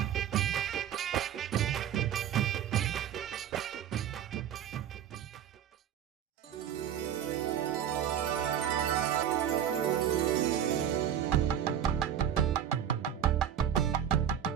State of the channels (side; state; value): left; quieter; 9.5 dB